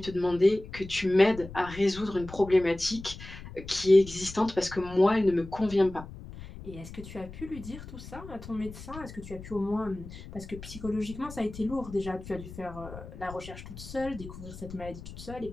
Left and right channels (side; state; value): left; noise; rumble, 13 dB below the sound